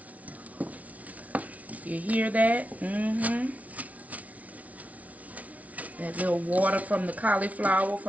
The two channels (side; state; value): left; late; 0.069 ms